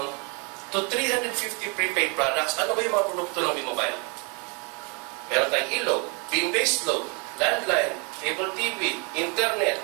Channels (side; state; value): left; quieter; 33.4 dB